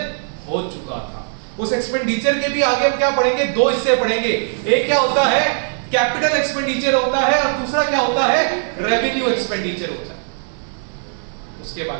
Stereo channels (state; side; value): silent; left; 65 dB below the other